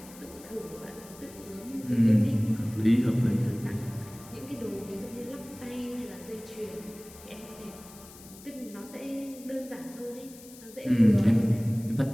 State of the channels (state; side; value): noise; left; hiss, 19 dB below the sound